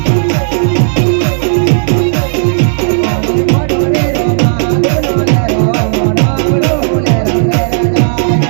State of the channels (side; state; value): left; silent; digital silence